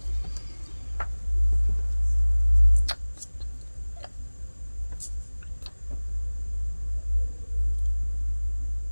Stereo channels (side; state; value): both; inverted; correlation -1.00